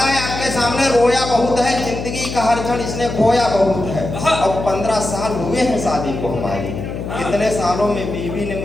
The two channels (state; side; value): noise; left; hum, 6 dB below the sound